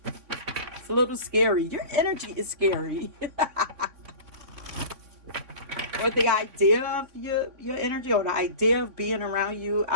It's a little scary. Your energy is scary. Or the idea of your energy, or the idea of being around you,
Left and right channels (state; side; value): late; left; 3.6 ms